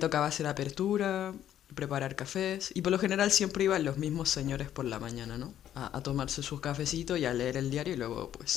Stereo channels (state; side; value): quieter; right; 11.0 dB